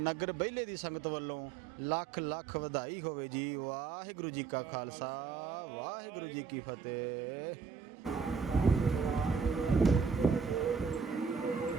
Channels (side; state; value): left; quieter; 5.8 dB